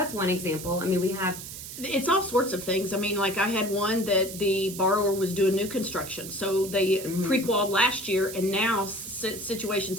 one example. I mean, we have It's all sorts of things. I mean, like I had one that the borrower was doing new construction. So they pre-qualified last year, and now situations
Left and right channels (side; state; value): right; noise; hiss, 11 dB below the sound